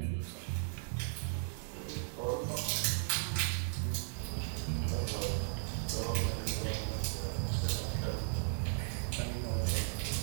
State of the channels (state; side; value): silent; left; digital silence